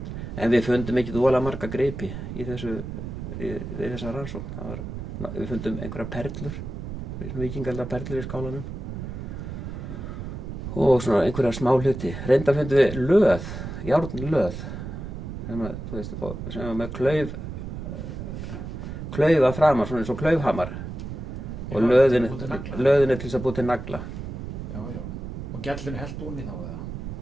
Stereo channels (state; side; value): noise; right; rumble, 7 dB below the sound